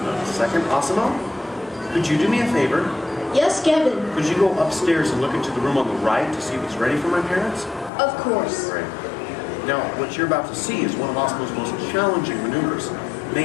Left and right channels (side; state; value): right; drops out; at 7.9 s